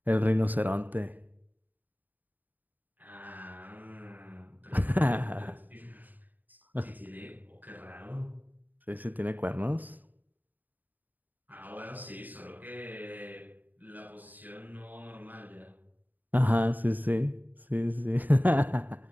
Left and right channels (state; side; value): late; left; 0.085 ms